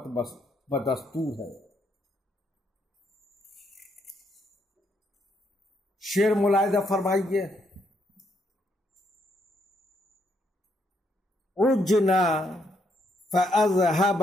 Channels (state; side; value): normal; both; correlation 0.75